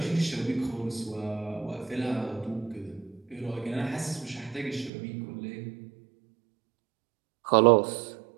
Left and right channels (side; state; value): left; drops out; at 4.9 s